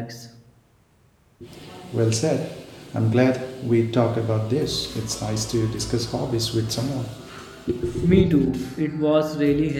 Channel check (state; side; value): identical; both; correlation 1.00